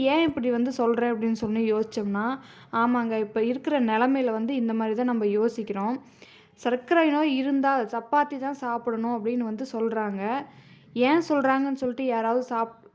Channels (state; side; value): identical; both; correlation 1.00